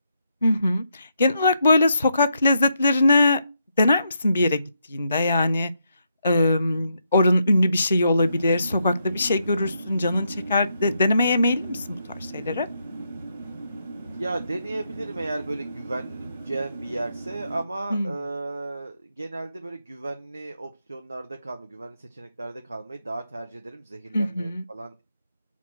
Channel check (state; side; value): inverted; both; correlation -0.79